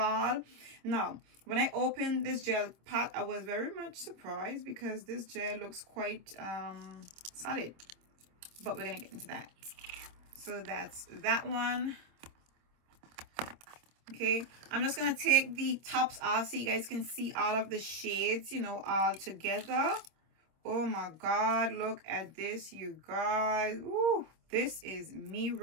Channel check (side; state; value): left; late; 26 ms